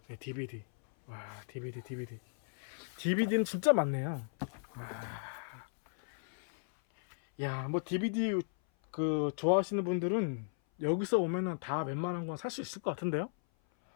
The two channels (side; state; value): right; silent; 54 dB below the other